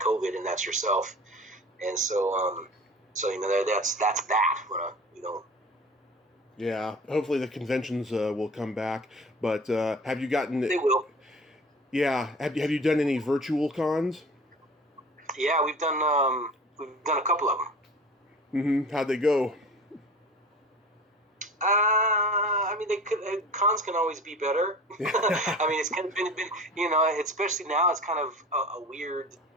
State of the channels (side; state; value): both; normal; correlation 0.41